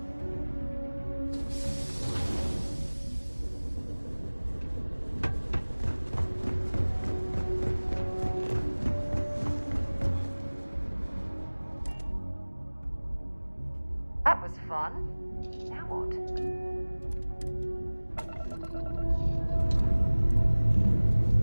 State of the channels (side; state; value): both; inverted; correlation -1.00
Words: That was fun. Now what?